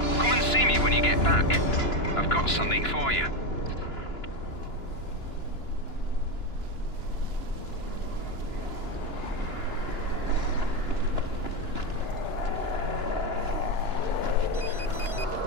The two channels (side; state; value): right; late; 2.9 ms